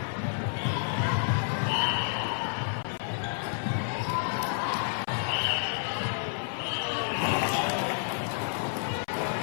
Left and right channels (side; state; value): right; silent; 58 dB below the other